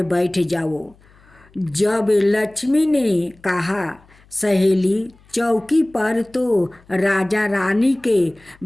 बैठ जाओ। जब लक्ष्मी ने कहा सहेली चौकी पर तो राजा रानी के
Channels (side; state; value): left; noise; hum, 29 dB below the sound